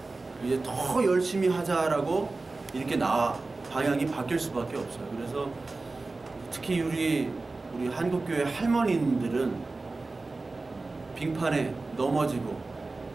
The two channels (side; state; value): left; quieter; 3.5 dB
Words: 이제 더 열심히 하자라고 이렇게 방향이 바뀔 수밖에 없어요. 그래서 특히 우리 한국교회 할머니들은 빙판에 넘어지고